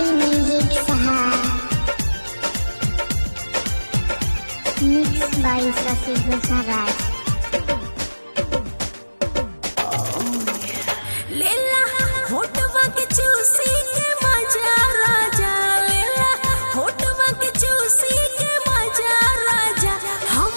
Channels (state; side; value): inverted; both; correlation -1.00